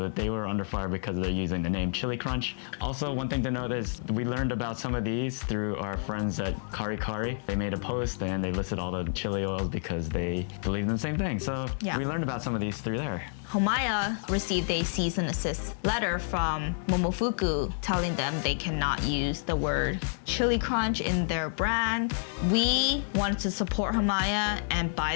they were under fire because they're using the name Chili Crunch. Also, one thing to note is we learned about some of these through our friends at Kari Kari. They made a post and they listed all the chili oils because they believe in the same thing. So we learned about some of these through there. Homaya received a cease and desist letter from Momofuku telling them they cannot use the word chili crunch in their brand. We wanted to support Homaya and buy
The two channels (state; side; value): silent; right; 58 dB below the other